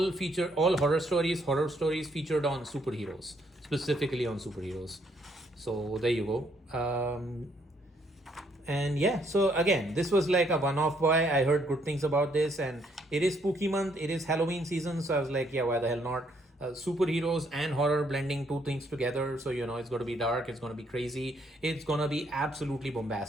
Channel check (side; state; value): both; normal; correlation 0.70